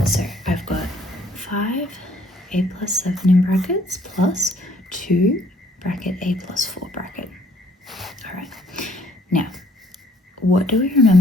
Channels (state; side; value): normal; both; correlation 0.63